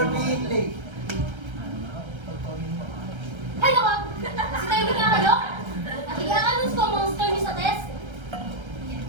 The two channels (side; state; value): left; late; 1.3 ms